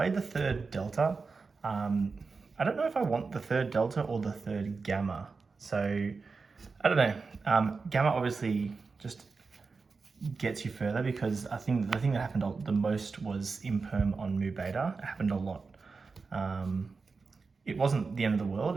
the 3rd Delta. I don't know if I want the 3rd Delta or the 3rd Gamma. So I don't know. Gamma obviously just gets you further because I think the thing that happened the most was imperm on Mu Beta. It happened a lot. It wasn't the end of the world,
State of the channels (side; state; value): left; quieter; 4.5 dB